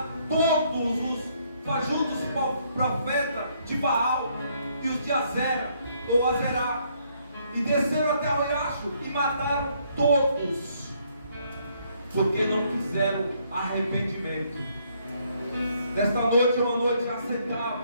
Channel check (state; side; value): inverted; both; correlation -0.69